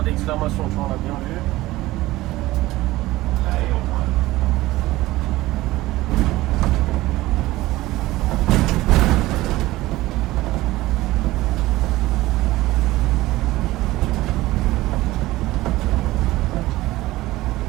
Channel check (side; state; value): left; quieter; 17.7 dB